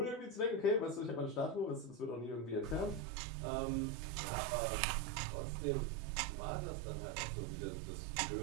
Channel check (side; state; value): left; drops out; at 3.1 s